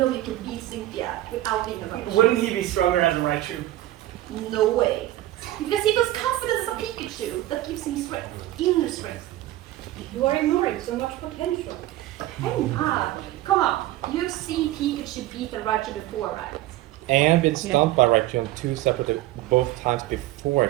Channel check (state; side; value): quieter; left; 15.4 dB